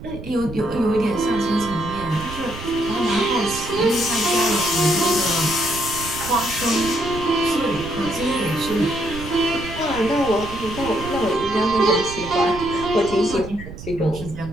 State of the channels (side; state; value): right; noise; rumble, 11 dB below the sound